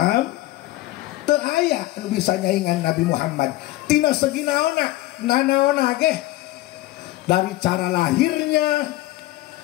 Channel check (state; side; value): quieter; right; 17.2 dB